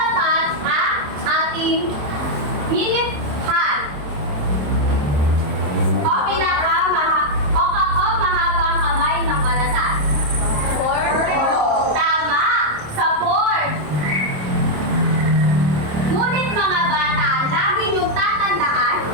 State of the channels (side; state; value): left; late; 27 ms